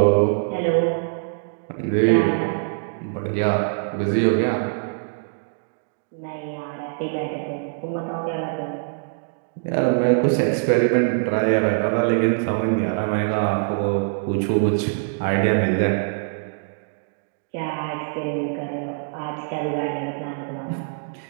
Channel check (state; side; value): silent; left; digital silence